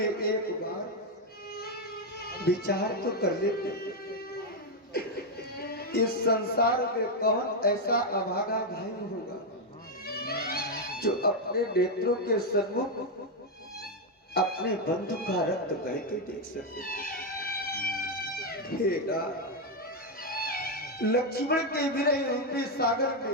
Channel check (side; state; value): both; normal; correlation 0.03